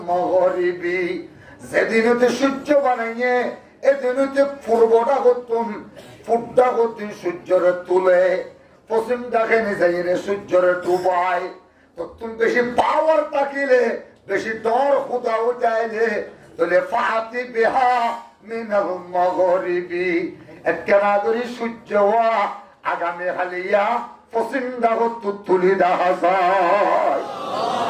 মাগরিবি যেদিনতে সূর্য বানাইয়ে এদিনতে পূর্বটা করতুম ফুটটা করতুম সূর্যের তুলে পশ্চিম দেখেনি যাইরে সূর্যের ডুবায় তো তুমি বেশি পাওয়ার তাকিলে বেশি ডর খুদা উঠাইলে তাহলে ফাতি বিহা মিনাল মাগরিবি একখানা করি সূর্য আগামী হালিয়া পশ্চিম দাগত তুলি দেখা যায়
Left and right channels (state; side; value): identical; both; correlation 1.00